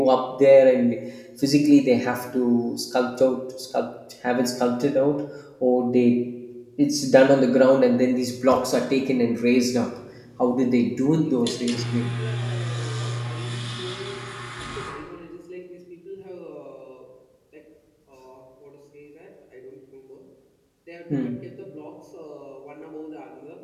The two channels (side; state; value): both; identical; correlation 1.00